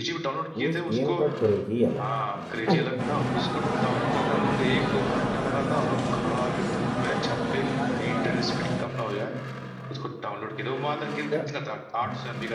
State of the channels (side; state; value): both; identical; correlation 1.00